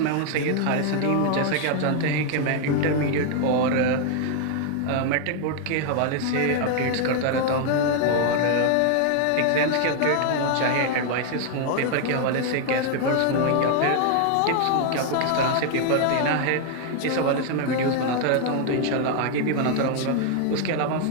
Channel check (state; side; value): different; both; correlation 0.00